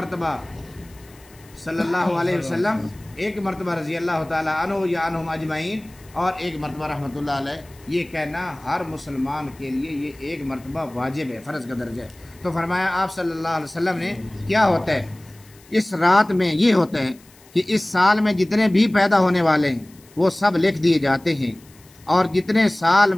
صلی اللہ علیہ وسلم، ایک مرتبہ رضی اللہ تعالیٰ عنہ یا عنہم اجمعین، اور ایک مرتبہ رحمۃ اللہ علیہ. یہ کہنا ہر مسلمان کے لیے یہ ایک مرتبہ واجب ہے، فرض کا درجہ ہے. تو فرمایا آپ صلی اللہ علیہ وسلم نے کیا ہوتا ہے اس رات میں؟ یہ ہوتا ہے کہ اس سال میں جتنے بھی پیدا ہونے والے ہیں وہ سب لکھ دیے جاتے ہیں، اور جتنے سال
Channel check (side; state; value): left; noise; hiss, 26 dB below the sound